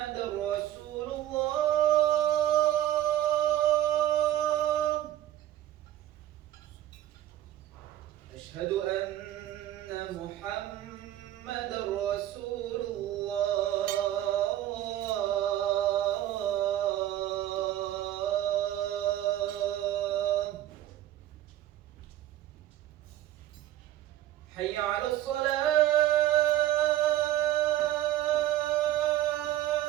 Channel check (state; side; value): quieter; left; 13.2 dB